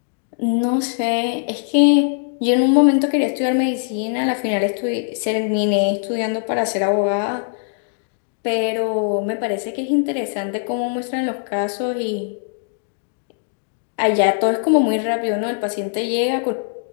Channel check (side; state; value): right; silent; digital silence